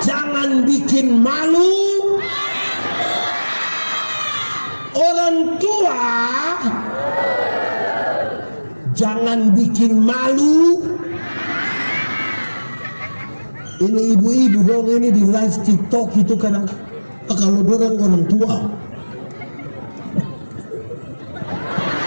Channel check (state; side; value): inverted; both; correlation -1.00